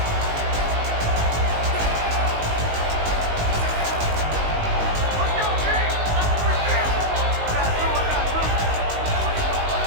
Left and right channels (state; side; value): late; left; 19 ms